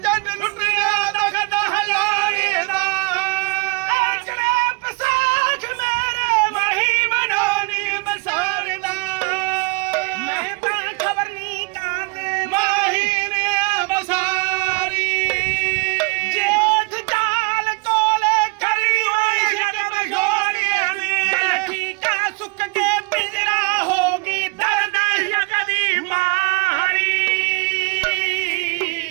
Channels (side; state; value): left; quieter; 30.1 dB